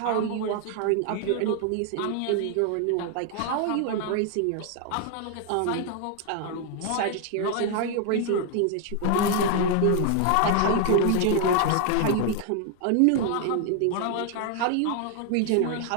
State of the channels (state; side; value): different; both; correlation 0.00